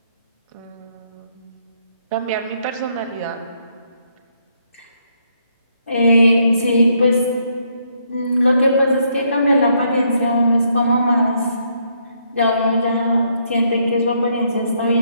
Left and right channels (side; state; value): both; inverted; correlation -0.73